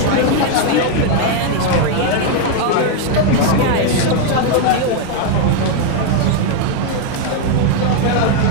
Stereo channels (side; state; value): both; different; correlation 0.01